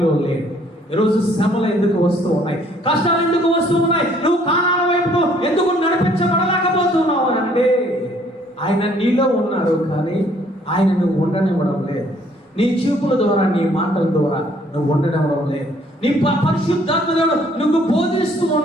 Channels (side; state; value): both; normal; correlation 0.62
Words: లేడు. ఈరోజు శ్రమలు ఎందుకు వస్తూ ఉన్నాయి? కష్టాలు ఎందుకు వస్తూ ఉన్నాయి? నువ్వు కానాల వైపు ఎందుకు నడిపించబడలేకపోతున్నావు అని అంటే ఆయన నీలో ఉన్నాడు, కానీ ఆయన నువ్వు ఉండనివ్వడం లేదు. నీ చూపుల ద్వారా, నీ మాటల ద్వారా నువ్వు ఉండడం లేదు. నీ పరిశుద్ధాత్మ దేవుడు నువ్వు బోధిస్తూ